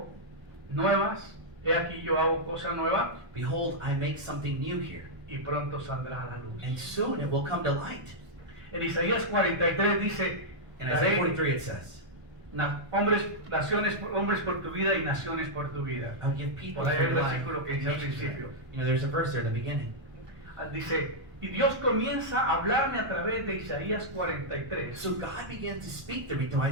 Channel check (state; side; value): late; left; 1.1 ms